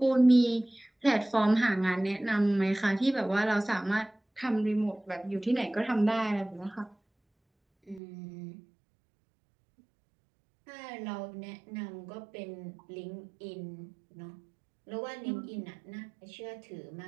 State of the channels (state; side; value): drops out; left; at 8.0 s